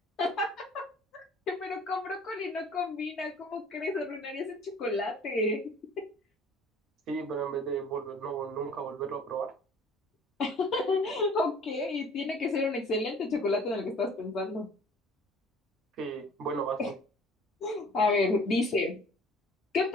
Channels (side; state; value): both; normal; correlation 0.50